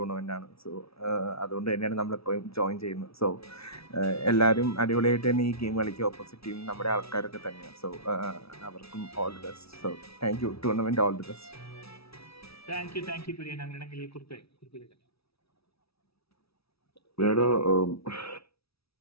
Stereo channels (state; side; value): late; right; 0.77 ms